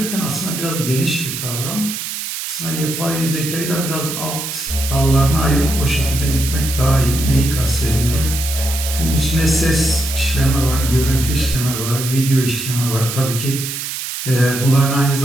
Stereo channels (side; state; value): right; noise; hiss, 5 dB below the sound